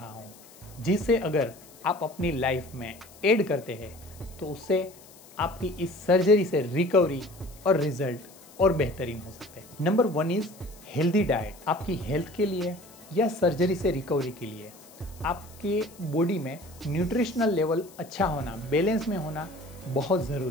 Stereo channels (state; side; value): noise; left; hiss, 23 dB below the sound